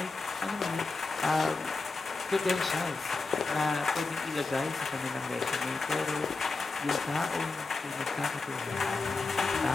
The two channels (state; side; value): quieter; right; 3.8 dB